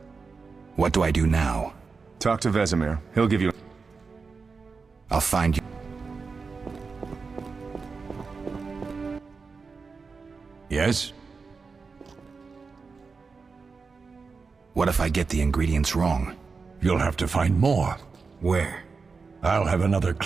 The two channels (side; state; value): left; quieter; 4.7 dB